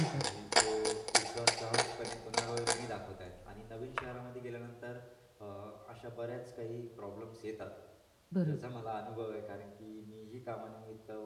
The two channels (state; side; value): identical; both; correlation 1.00